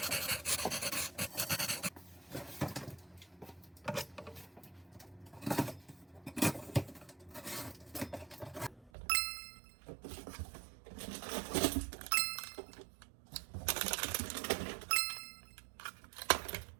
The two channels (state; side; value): drops out; left; at 8.9 s